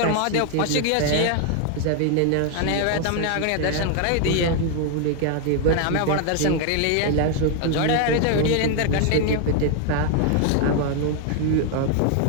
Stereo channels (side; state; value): both; different; correlation 0.00